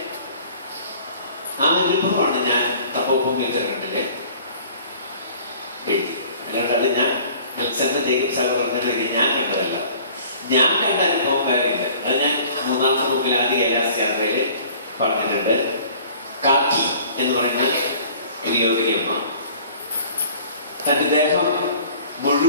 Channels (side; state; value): both; inverted; correlation -0.49